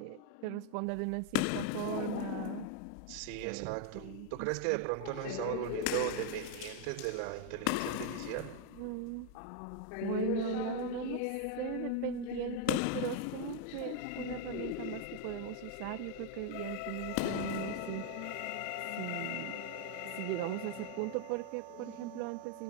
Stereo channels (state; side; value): different; both; correlation 0.01